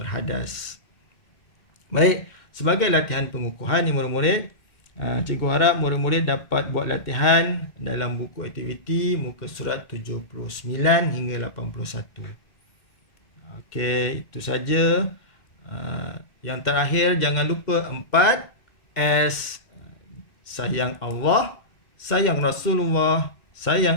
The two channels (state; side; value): late; right; 2.1 ms